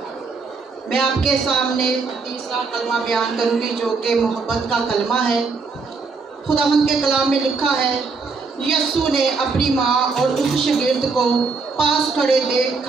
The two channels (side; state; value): left; quieter; 4.5 dB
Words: میں آپ کے سامنے تیسرا کلمہ بیان کروں گی جو کہ محبت کا کلمہ ہے۔ خداوند کے کلام میں لکھا ہے، یسوع نے اپنی ماں اور اس شاگرد کو پاس کھڑے دیکھ